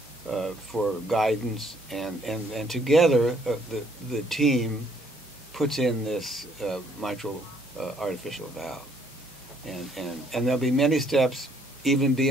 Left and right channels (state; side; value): normal; both; correlation 0.65